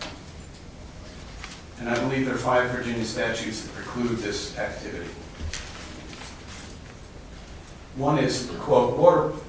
And I believe there are 5 Virginia statutes that preclude this activity. One is, quote,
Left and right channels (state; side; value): identical; both; correlation 1.00